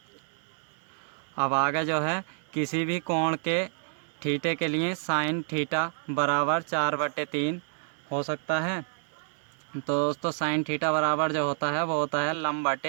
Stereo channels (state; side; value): silent; left; digital silence